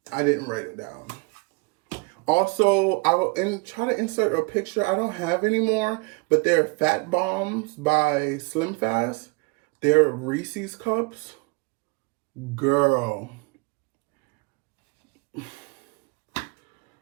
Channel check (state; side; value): quieter; left; 29.1 dB